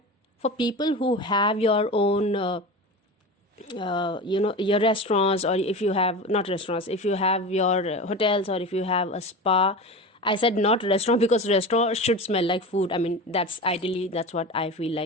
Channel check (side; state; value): both; normal; correlation 0.28